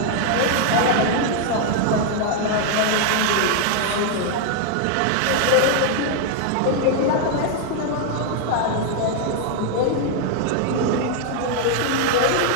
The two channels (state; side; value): different; both; correlation 0.00